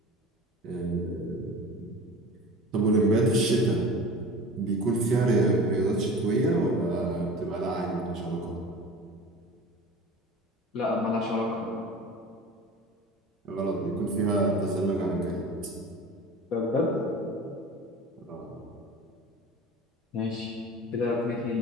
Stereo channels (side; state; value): both; normal; correlation 0.37